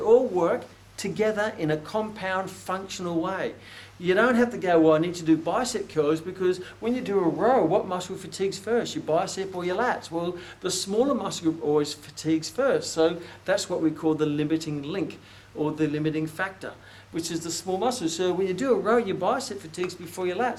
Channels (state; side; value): identical; both; correlation 1.00